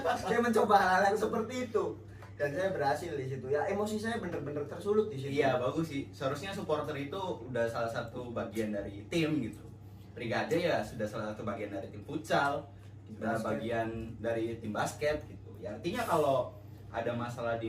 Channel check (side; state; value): both; identical; correlation 1.00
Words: Saya mencoba hal yang seperti itu. Dan saya berhasil di situ ya, emosi saya bener-bener tersulut di situ. Iya, bagus sih. Seharusnya supporter itu udah salah satu bagian dari tim gitu. Brigade ya sudah salah satu bagian dari tim futsal, udah bagian dari tim basket gitu. Ya artinya kalau ada masalah